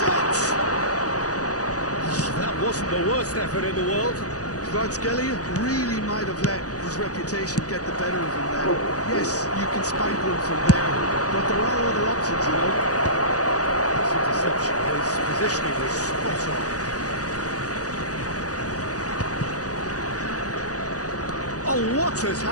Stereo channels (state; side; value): late; right; 0.67 ms